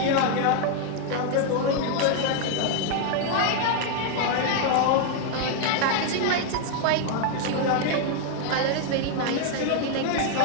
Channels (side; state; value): both; different; correlation 0.00